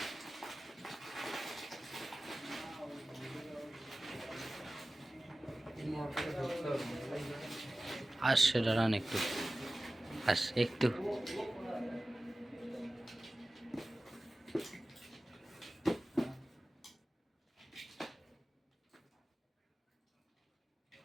আসছে দাঁড়ান একটু, একটু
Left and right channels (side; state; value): both; normal; correlation 0.96